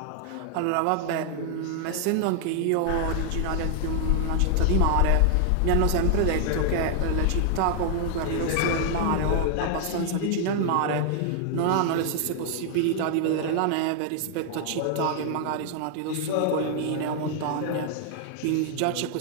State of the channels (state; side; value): different; both; correlation 0.00